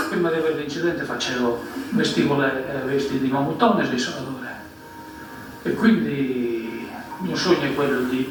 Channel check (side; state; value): both; identical; correlation 1.00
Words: Prima di avere l'incidente vestivo le vesti di mamuttone e di soldatore, e quindi il mio